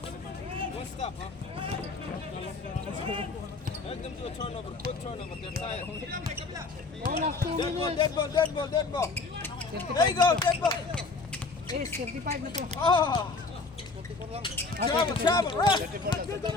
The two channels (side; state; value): right; quieter; 3.9 dB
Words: stop, huh? Let them do a turnover, quick turnover. They're tired. Dead ball, dead ball, dead ball, dead ball. 35 There you go, na to. dead ball. Eh, 35 na to. Oh! Ah, Travel, 34. travel, run!